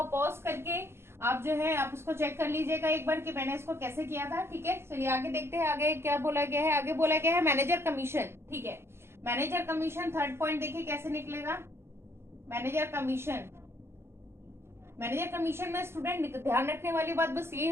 पॉज करके आप जो है आप उसको चेक कर लीजिएगा एक बार कि मैंने इसको कैसे किया था। ठीक है, चलिए आगे देखते हैं। आगे क्या बोला गया है? आगे बोला गया है मैनेजर कमीशन। ठीक है, मैनेजर कमीशन थर्ड पॉइंट देखिए कैसे निकलेगा। मैनेजर कमीशन, मैनेजर कमीशन में स्टूडेंट ध्यान रखने वाली बात बस ये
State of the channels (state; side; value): late; left; 0.12 ms